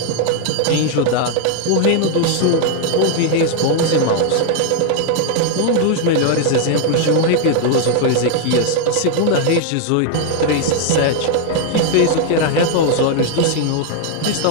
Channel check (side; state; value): both; different; correlation 0.00